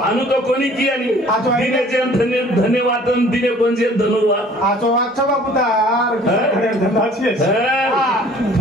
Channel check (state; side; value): normal; both; correlation 0.52